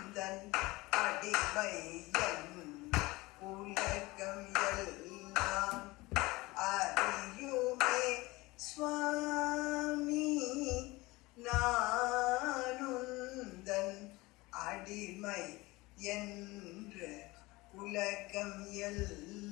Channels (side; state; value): right; quieter; 21.7 dB